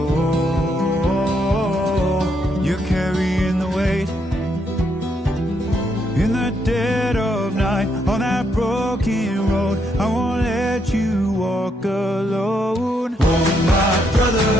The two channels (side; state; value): both; normal; correlation 0.76